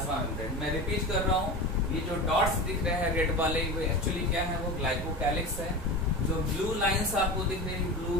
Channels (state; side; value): normal; both; correlation 0.28